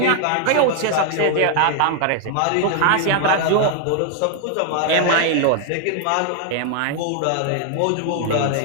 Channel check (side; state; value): both; different; correlation 0.00